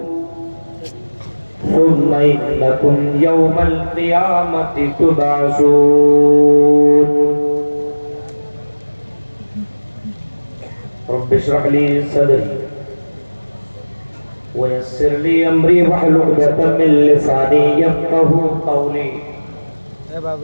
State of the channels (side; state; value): both; inverted; correlation -1.00